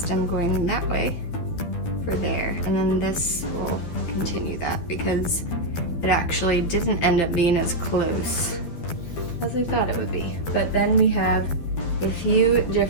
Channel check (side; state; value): right; late; 12 ms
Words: going that way for there. And then this will continue that because it actually didn't end up being as close as I thought it would be. But then we have a few